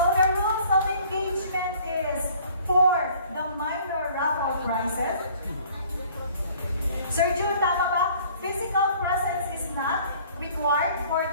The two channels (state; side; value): inverted; both; correlation -0.54